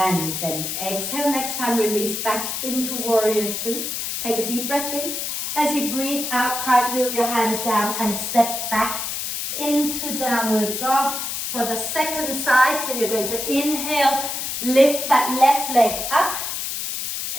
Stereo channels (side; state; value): left; noise; hiss, 3 dB below the sound